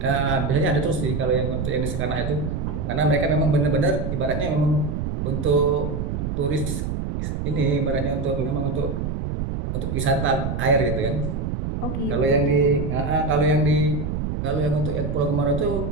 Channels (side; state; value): right; noise; rumble, 3 dB below the sound